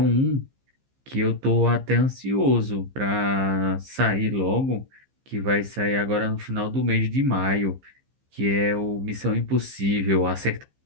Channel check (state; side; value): late; left; 15 ms